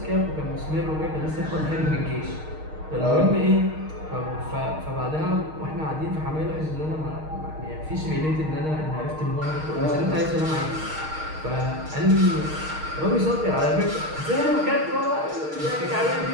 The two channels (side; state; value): left; late; 6.5 ms